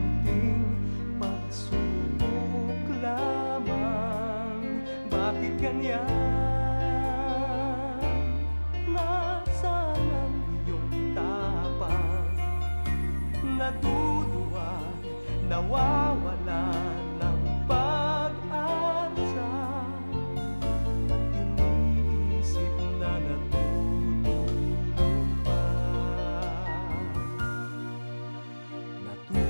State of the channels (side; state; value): both; inverted; correlation -1.00